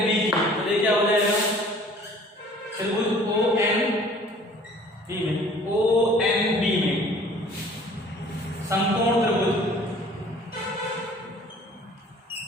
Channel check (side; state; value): both; normal; correlation 0.51